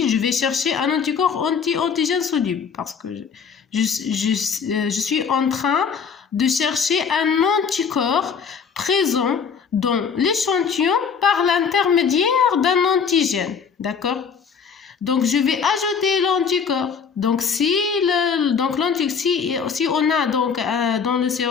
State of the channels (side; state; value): right; quieter; 6.3 dB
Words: je vais chercher un anticorps anti-antigène soluble parce que je suis en train de chercher un anticorps présent dans l'échantillon par l'intermédiaire d'un antigène. D'accord? Donc, je vais ajouter l'anticorps. Donc, si on a donc, dans le